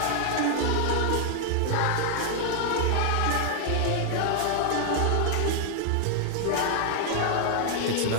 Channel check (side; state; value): both; different; correlation 0.00